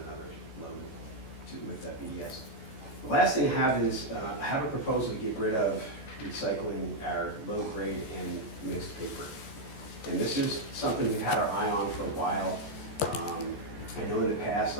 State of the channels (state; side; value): late; right; 14 ms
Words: load with that BDS. The last thing I have is, I have a proposal to get rid of recycling our low grade and mixed paper. And this is something we've had our eye on for a while. I know in the past,